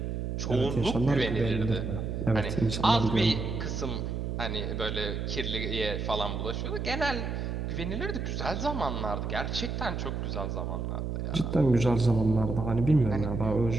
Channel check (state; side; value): noise; right; hum, 3 dB below the sound